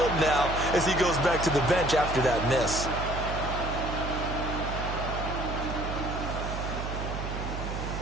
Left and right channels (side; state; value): right; noise; hum, 5 dB below the sound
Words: now as he goes back to the bench after that miss.